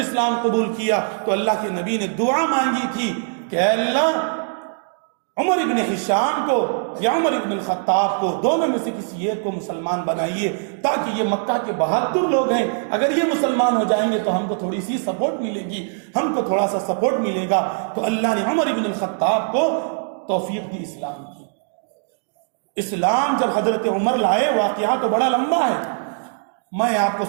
قبول کیا تو اللہ کے نبی نے دعا مانگی تھی کہ اے اللہ عمر ابن ہشام کو یا عمر ابن الخطاب کو دونوں میں سے کسی ایک کو مسلمان بنائیے تاکہ یہ مکہ کے بہادر لوگ ہیں، اگر یہ مسلمان ہو جائیں گے تو ہم کو تھوڑی سی سپورٹ ملے گی، ہم کو تھوڑا سا سپورٹ ملے گا۔ تو اللہ نے عمر ابن الخطاب کو توفیق دی اسلام کی۔ اسلام جب حضرت عمر لائے، واقعہ تو بڑا لمبا ہے، میں آپ کو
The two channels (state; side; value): silent; left; digital silence